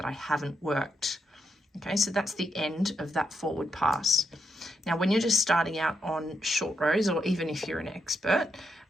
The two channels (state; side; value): normal; both; correlation 0.82